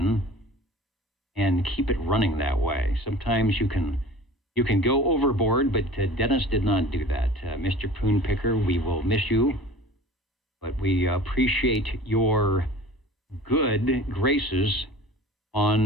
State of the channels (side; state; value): both; normal; correlation 0.42